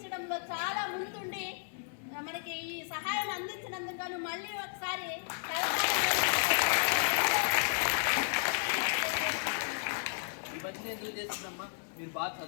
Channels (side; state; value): right; silent; 56 dB below the other